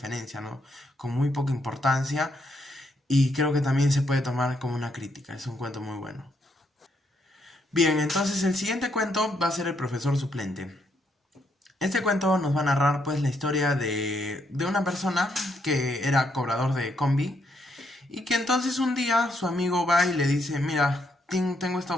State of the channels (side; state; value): both; normal; correlation 0.75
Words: ¿no? Con muy poca importancia y creo que también se puede tomar como una crítica. Es un cuento muy bueno. Bien, entonces el siguiente cuento va a ser El profesor suplente. Este cuento nos va a narrar pues la historia de una persona que era cobrador de combi y que entonces un día su amigo va y le dice, mira, tengo esta